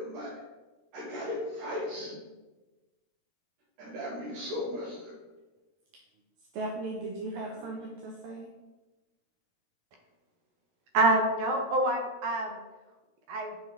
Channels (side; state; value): left; late; 15 ms